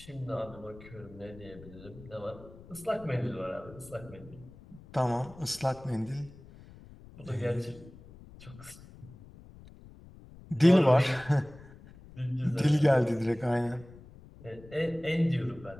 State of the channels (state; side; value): noise; left; rumble, 20 dB below the sound